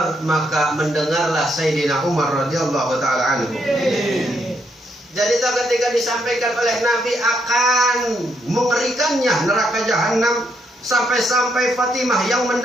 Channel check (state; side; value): normal; both; correlation 0.76